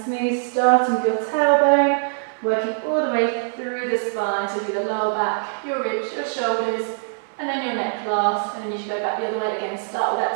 smooth, starting with your tailbone, working all the way through the spine, so through the lower back, your ribs, your shoulders, and then your neck last, and then you should go back the other way again. Start with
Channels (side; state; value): left; silent; digital silence